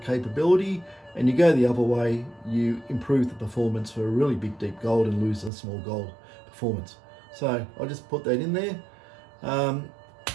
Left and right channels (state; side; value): drops out; left; at 5.5 s